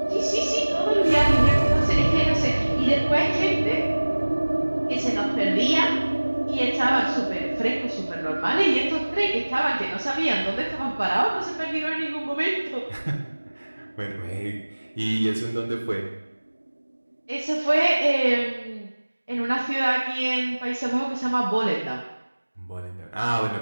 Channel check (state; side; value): inverted; both; correlation -1.00